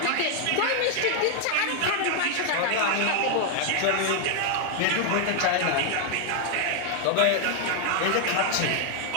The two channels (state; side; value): different; both; correlation 0.00